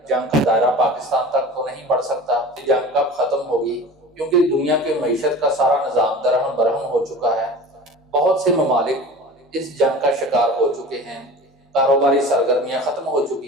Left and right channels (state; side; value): normal; both; correlation 0.37